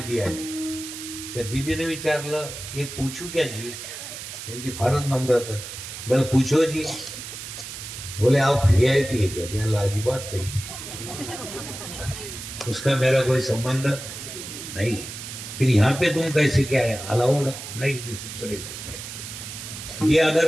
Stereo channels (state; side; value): noise; right; hiss, 10 dB below the sound